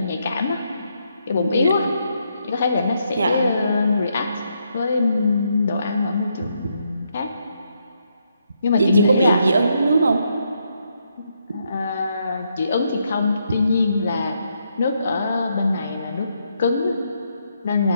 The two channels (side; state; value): both; inverted; correlation -0.77